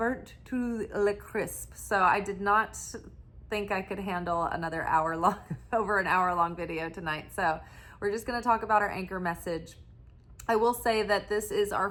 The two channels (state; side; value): identical; both; correlation 1.00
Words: to the crisp. So I did not think I could handle another over an hour long video tonight. So we're just going to talk about our anchor message. I will say that this is